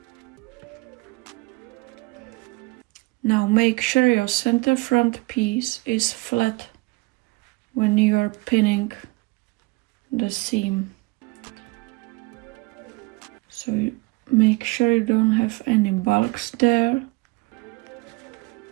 Now make sure your center front piece is flat when you are pinning the seam. So you make sure you don't have any bulks there.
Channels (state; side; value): quieter; left; 24.0 dB